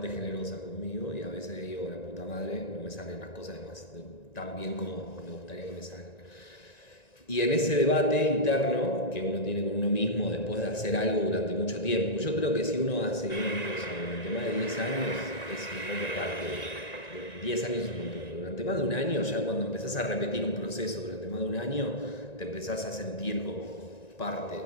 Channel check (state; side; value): late; right; 1.9 ms